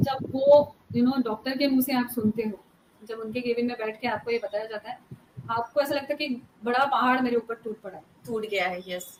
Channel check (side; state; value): both; identical; correlation 1.00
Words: वो डॉक्टर के मुंह से आप सुनते हो, जब उनके केबिन में बैठ के आपको ये बताया जाता है, आपको ऐसा लगता है कि बड़ा पहाड़ मेरे ऊपर टूट पड़ा है, टूट गया है। यस